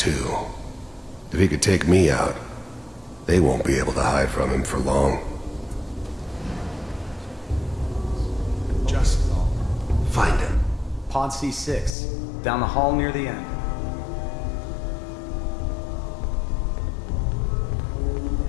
If he could take me out, they won't be able to hide from him for long. Just find him. Pod C6, down the hall near the end.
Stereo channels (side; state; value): right; drops out; at 12.0 s